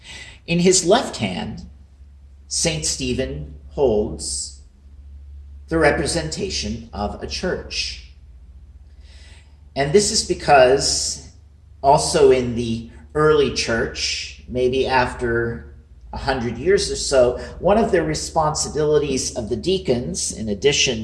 In his left hand, St. Stephen holds the representation of a church. And this is because also in the early church, maybe after 100 years or so, one of the responsibilities of the deacons, in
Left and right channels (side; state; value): both; identical; correlation 1.00